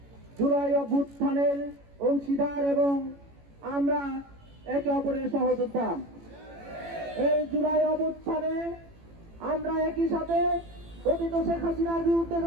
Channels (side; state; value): left; late; 18 ms